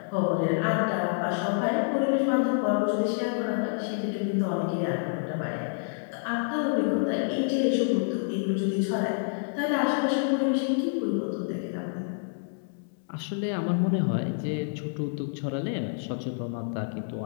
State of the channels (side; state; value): right; silent; 59 dB below the other